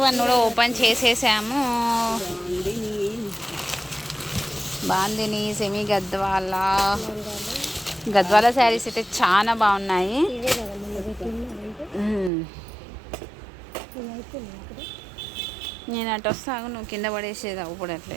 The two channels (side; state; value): left; drops out; at 12.3 s